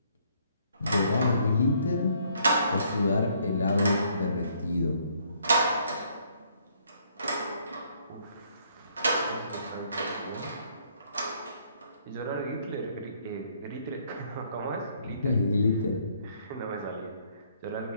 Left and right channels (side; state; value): both; inverted; correlation -0.66